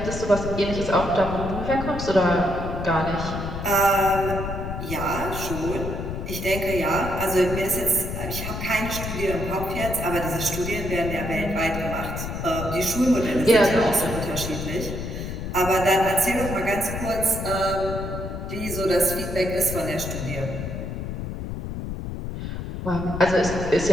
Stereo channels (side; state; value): left; noise; rumble, 6 dB below the sound